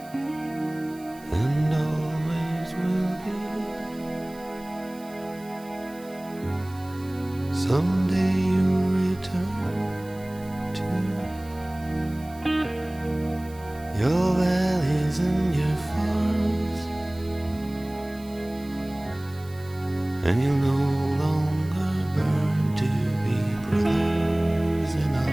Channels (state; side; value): noise; right; hiss, 23 dB below the sound